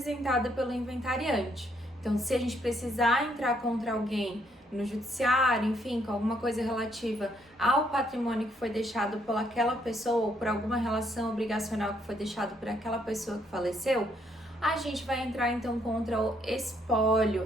pelo inventariante. Então, se a gente precisar entrar contra alguém no judiciário, enfim, com alguma coisa relativa ao patrimônio que foi deixado por aquela pessoa ou por alguma relação obrigacional que foi deixado por aquela pessoa que faleceu, a gente vai entrar então contra o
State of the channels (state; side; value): normal; both; correlation 0.71